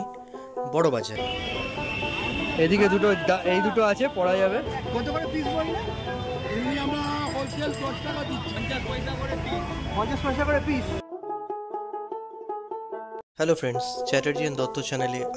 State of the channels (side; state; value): both; identical; correlation 1.00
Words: বড় বাজারে। এদিকে এই দুটো আছে, পড়া যাবে। কত করে পিস বললে? এমনি আমরা হোলসেল 10 টাকা দিচ্ছি, 50 পয়সা করে পিস। 50 পয়সা করে piece. Hello friends, Chatterjee and Dutta চ্যানেলে